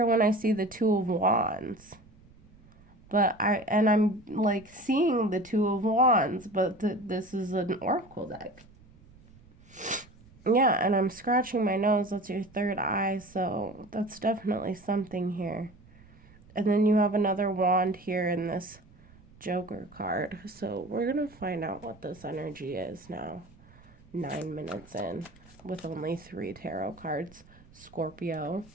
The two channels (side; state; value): right; noise; rumble, 25 dB below the sound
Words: when I see the 2 of Wands. But I'm like seeing the 2 of Wands, but this is an oracle deck. Yeah, and I'm scratching my nose. That's your 3rd eye, so that's definitely something here. And then you have another wand here in this Joker card. So we're going to find out what this energy is now. 9 minutes in with only 3 tarot cards. Scorpio.